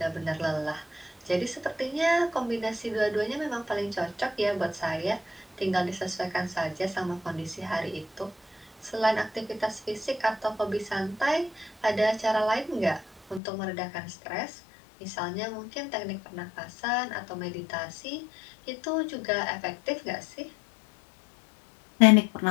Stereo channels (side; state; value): right; drops out; at 13.4 s